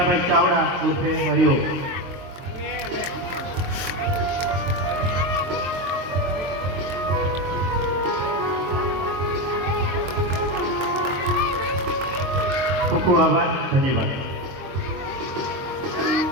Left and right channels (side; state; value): left; late; 23 ms